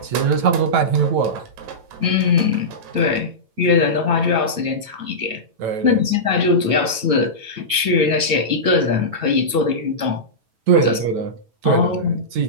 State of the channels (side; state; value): left; late; 9.1 ms